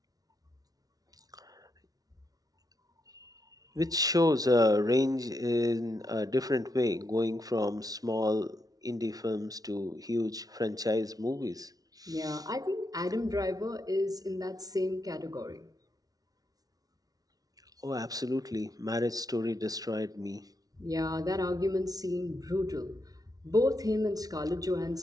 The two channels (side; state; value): left; late; 0.18 ms